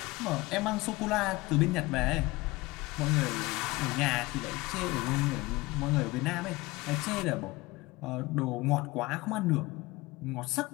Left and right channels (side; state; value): right; quieter; 21.5 dB